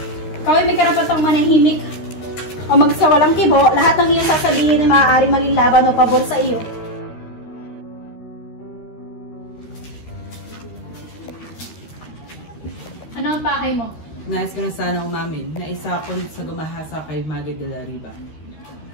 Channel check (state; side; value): late; right; 13 ms